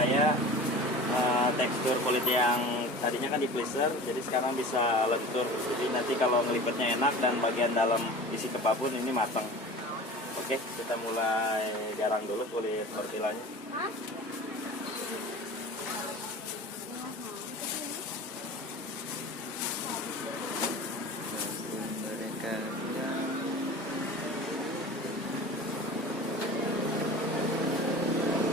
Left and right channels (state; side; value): normal; both; correlation 0.37